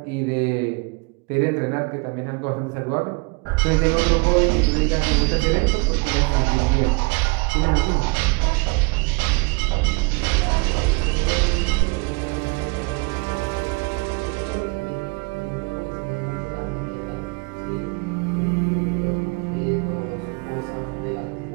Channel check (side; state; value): left; quieter; 30.0 dB